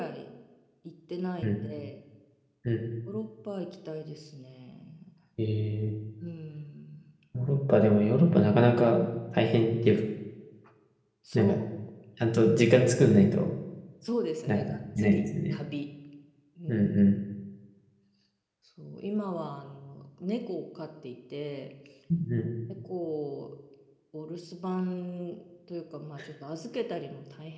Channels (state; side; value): identical; both; correlation 1.00